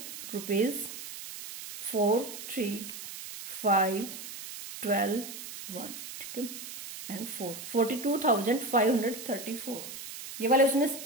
रुपीज 4,3,5,12,1, ठीक है, एंड 42,534 ये वाले उसने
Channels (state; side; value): noise; right; hiss, 10 dB below the sound